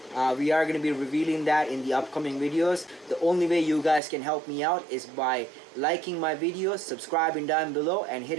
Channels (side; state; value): left; drops out; at 4.0 s